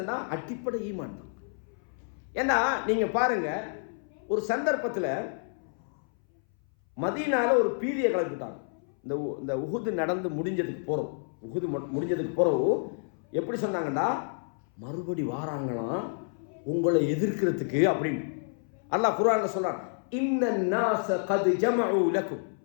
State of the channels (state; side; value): silent; right; 58 dB below the other